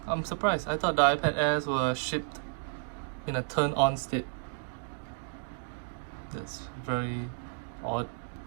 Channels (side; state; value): left; silent; digital silence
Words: I'm surprised. I thought the iPad Airs were shipped in a turn-on state. That's very odd.